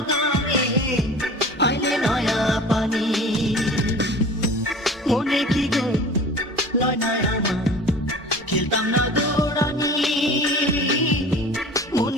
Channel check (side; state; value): both; normal; correlation 0.41